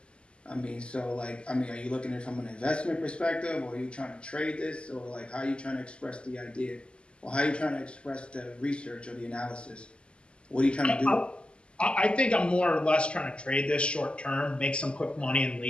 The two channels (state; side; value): late; right; 0.053 ms